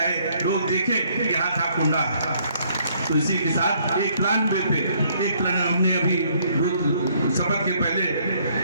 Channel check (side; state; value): both; inverted; correlation -0.65